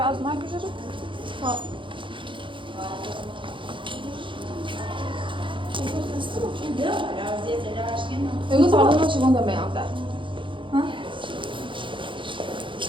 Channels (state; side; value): late; left; 0.24 ms